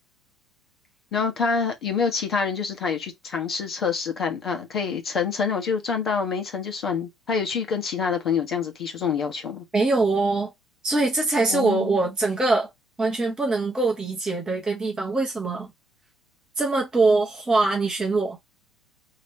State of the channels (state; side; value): normal; both; correlation 0.66